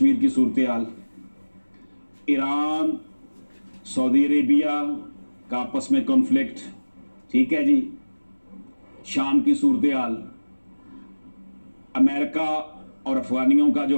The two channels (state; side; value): inverted; both; correlation -1.00